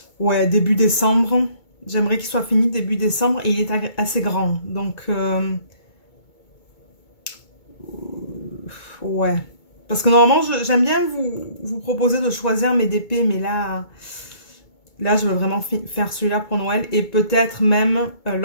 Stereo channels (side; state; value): right; late; 2.2 ms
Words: ouais, début décembre. J'aimerais qu'il soit fini début décembre et il est assez grand. Donc ouais. Parce que normalement, j'aime bien vous proposer de choisir mes DP, mais là je veux vraiment faire celui-là pour Noël. Et peut-être même